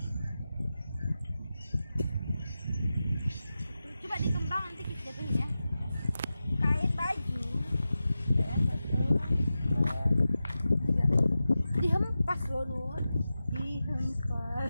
Coba dikembang nanti kita jatuhin ya. Kain baju. Ya, 1, 2, 3. Dihempas loh Nur.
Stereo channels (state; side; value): inverted; both; correlation -0.93